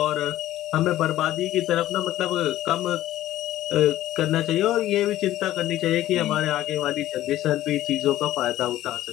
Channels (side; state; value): right; quieter; 14.2 dB